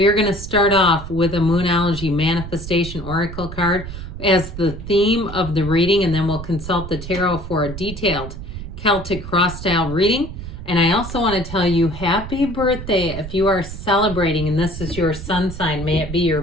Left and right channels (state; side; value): noise; right; rumble, 9 dB below the sound